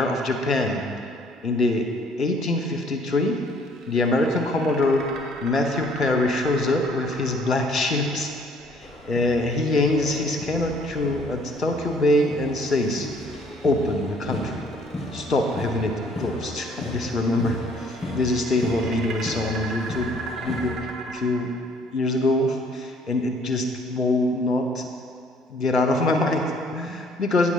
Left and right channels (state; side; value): normal; both; correlation 0.60